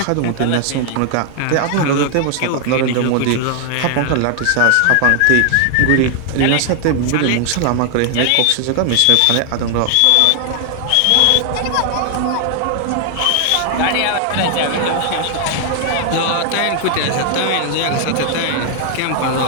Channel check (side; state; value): both; different; correlation 0.00